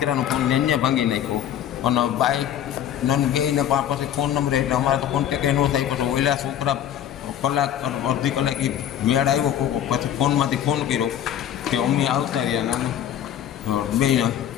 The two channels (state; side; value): quieter; right; 10.5 dB